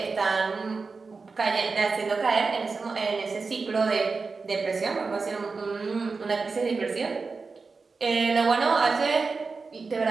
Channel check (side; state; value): left; quieter; 4.4 dB